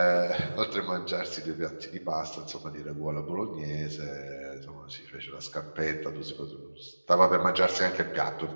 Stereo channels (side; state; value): both; inverted; correlation -1.00